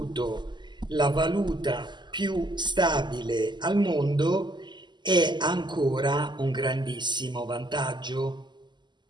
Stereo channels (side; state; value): left; late; 0.21 ms